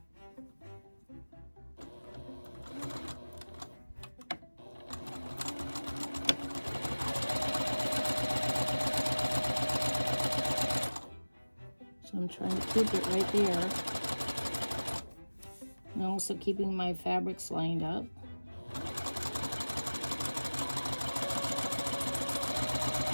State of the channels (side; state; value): both; inverted; correlation -1.00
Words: Trying to keep it right there. And also keeping my fabrics lined up.